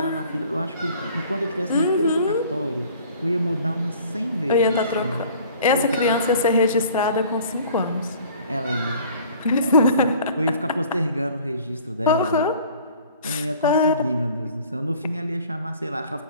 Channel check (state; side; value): inverted; both; correlation -0.50